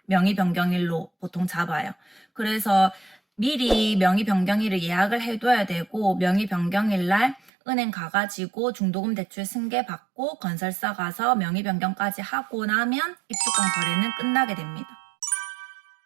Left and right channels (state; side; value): drops out; left; at 7.5 s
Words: 명의 변경일로 보통 잡아요. 그래서 미리 명의 변경일을 예약을 해둬야 되고, 명의 변경일 날 은행 가가지고 중도금 대출 승계 받고 건설사 가서 명의 변경까지 하고 나면 입주권 거래는 끝나게 됩니다.